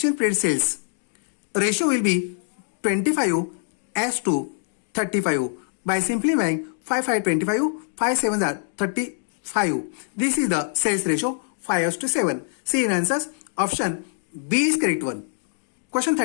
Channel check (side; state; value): right; silent; digital silence